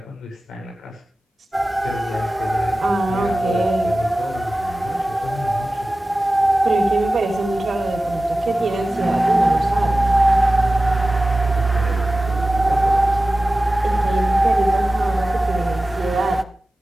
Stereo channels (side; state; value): both; normal; correlation 0.96